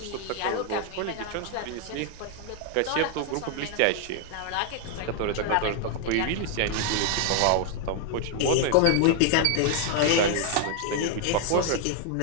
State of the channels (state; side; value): different; both; correlation 0.00